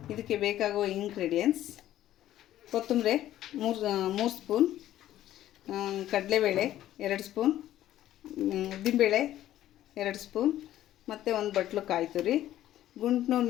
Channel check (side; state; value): right; quieter; 13.0 dB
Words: ಇದಕ್ಕೆ ಬೇಕಾಗುವ ಇಂಗ್ರೀಡಿಯೆಂಟ್ಸ್: ಕೊತ್ತಂಬರಿ 3 ಸ್ಪೂನ್, ಕಡಲೆಬೇಳೆ 2 ಸ್ಪೂನ್, ಉದ್ದಿನಬೇಳೆ 2 ಸ್ಪೂನ್, ಮತ್ತು ಒಂದು ಬಟ್ಲು ಕಾಯಿ ತುರಿ, ಗುಂಟ್ನೂರು